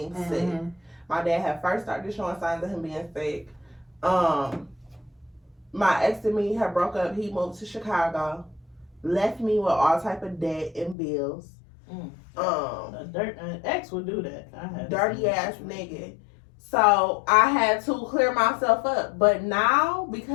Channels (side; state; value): right; drops out; at 11.0 s